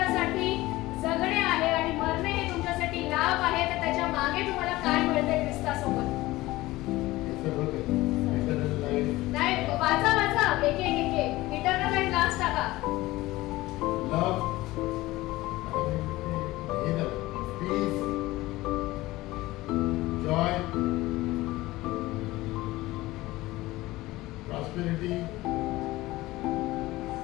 जगणे आहे आणि मरणे हे तुमच्यासाठी लाभ आहे, तर त्याच्या मागे तुम्हाला काय मिळते ख्रिस्तासोबत? नाही वाचा वाचा एक इटर्नल लाईफ लास्ट टाका. Love, peace, joy, prosperity,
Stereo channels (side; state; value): right; quieter; 18.6 dB